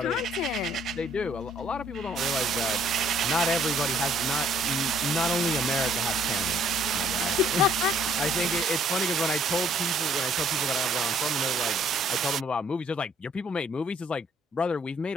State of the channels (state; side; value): normal; both; correlation 0.62